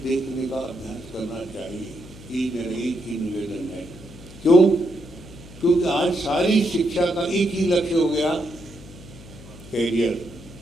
देखने का अभ्यास करना चाहिए। ये मेरा एक ही निवेदन है। क्यों? क्योंकि आज सारी शिक्षा का एक ही लक्ष्य हो गया, कैरियर।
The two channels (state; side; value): noise; left; hum, 18 dB below the sound